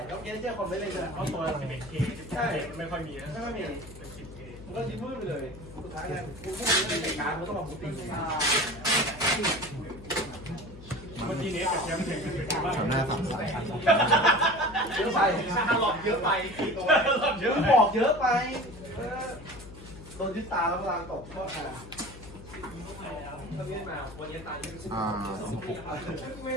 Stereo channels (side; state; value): left; noise; hum, 16 dB below the sound